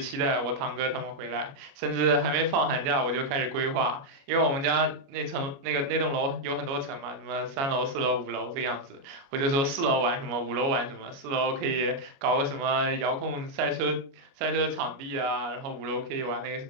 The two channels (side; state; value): left; late; 29 ms